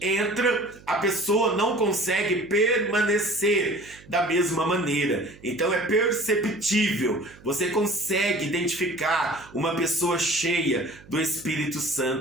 a pessoa não consegue permanecer da mesma maneira. Então, é perceptível. Você consegue identificar uma pessoa cheia do Espírito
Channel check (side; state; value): right; noise; hum, 23 dB below the sound